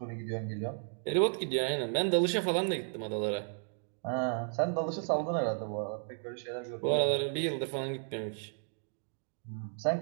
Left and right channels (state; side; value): silent; left; 55 dB below the other